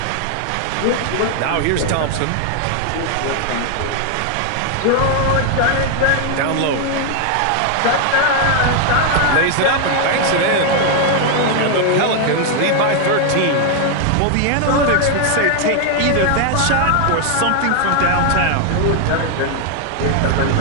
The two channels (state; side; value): different; both; correlation 0.00